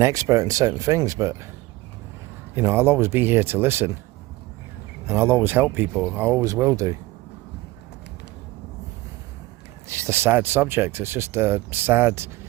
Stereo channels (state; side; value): quieter; left; 19.2 dB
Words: expert in certain things, but, you know, I'll always be here to listen, and I'll always help people. I always will do. It's just a sad subject. It's just a sad